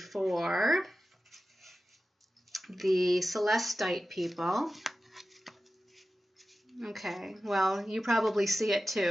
the Celestite people. Okay, well, you probably see it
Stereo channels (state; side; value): normal; both; correlation 0.94